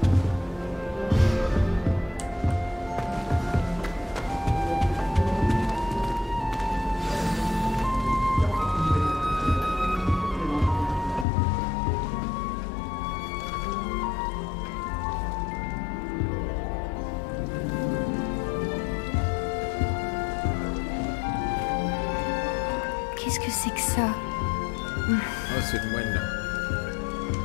Qu'est-ce que c'est que ça? Ah, c'est le moine là.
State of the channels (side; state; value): right; drops out; at 11.2 s